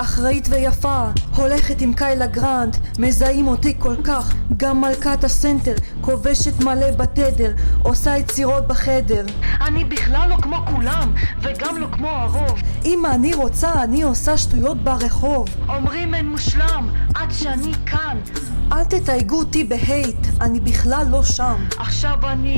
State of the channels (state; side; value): inverted; both; correlation -1.00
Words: אחראית ויפה, הולכת עם קיילה גרנט, מזהים אותי כל כך. גם מלכת הסנטר, כובשת מלא בתדר, עושה יצירות בחדר. אני בכלל לא כמו כולם, וגם לא כמו הרוב. אם אני רוצה, אני עושה שטויות ברחוב. אומרים אין מושלם, עד שאני כאן. אל תתייגו אותי בהייט, אני בכלל לא שם. עכשיו